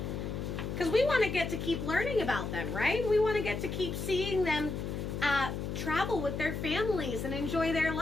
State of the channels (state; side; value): noise; left; hum, 4 dB below the sound